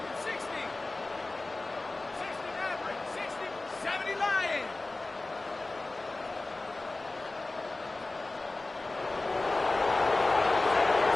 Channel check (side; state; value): right; quieter; 3.1 dB